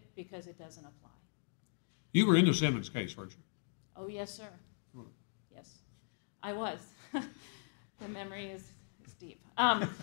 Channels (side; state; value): right; silent; digital silence